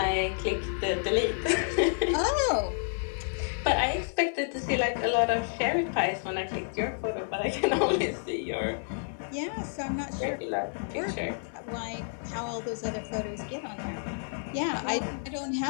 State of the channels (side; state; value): right; silent; 58 dB below the other